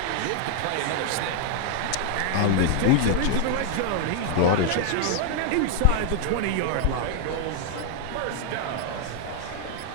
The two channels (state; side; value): different; both; correlation 0.00